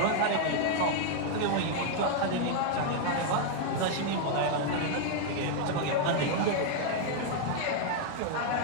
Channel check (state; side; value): different; both; correlation 0.00